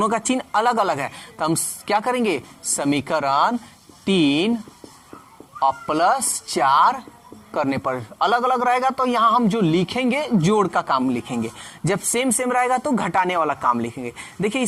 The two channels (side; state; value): both; identical; correlation 1.00